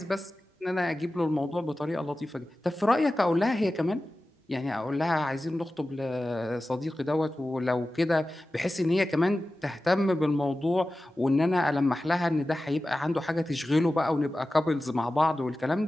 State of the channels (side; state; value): both; normal; correlation 0.95